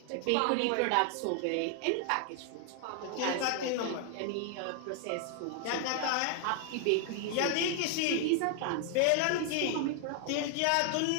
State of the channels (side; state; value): both; different; correlation 0.00